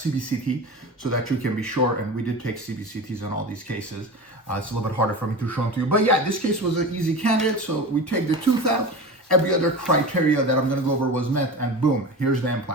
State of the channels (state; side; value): normal; both; correlation 0.30